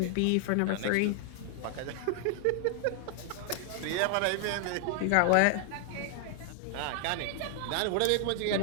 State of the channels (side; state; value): both; different; correlation 0.00